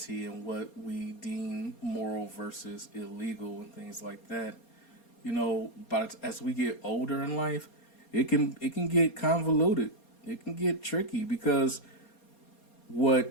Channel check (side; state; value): right; late; 4.3 ms